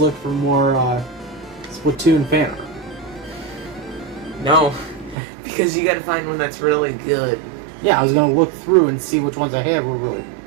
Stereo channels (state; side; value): drops out; left; at 5.2 s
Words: look for more Splatoon fan art. No, because you gotta find one that's really good. Yeah, I was going to look through and see which ones I had were really...